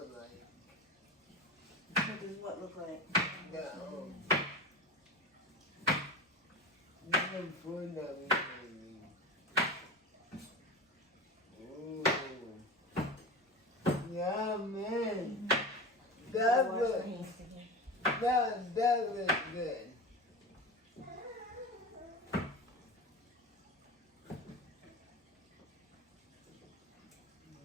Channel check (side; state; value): both; normal; correlation 0.29